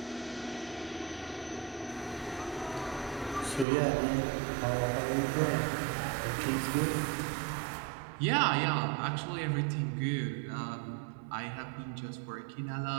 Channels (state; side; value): drops out; left; at 3.7 s